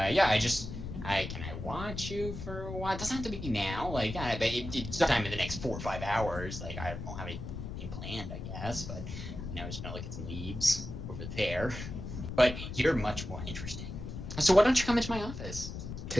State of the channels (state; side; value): noise; left; rumble, 8 dB below the sound